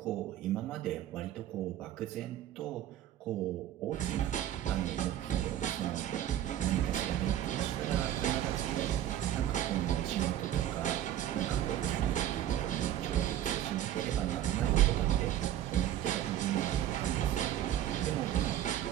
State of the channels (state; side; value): quieter; left; 12.0 dB